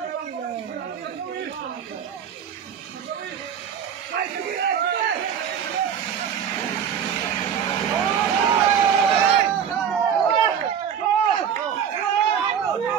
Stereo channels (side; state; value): left; quieter; 8.2 dB